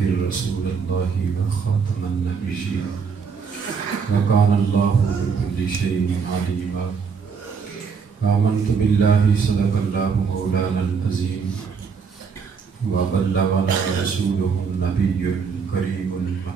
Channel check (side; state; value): left; quieter; 5.8 dB